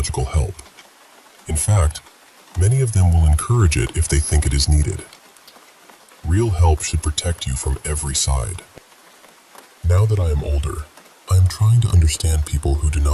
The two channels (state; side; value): identical; both; correlation 1.00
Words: help. In fact, many of them will encourage it if they think it is needed. Real help should protect you from every side. Now that I am older, I am trying to understand people who do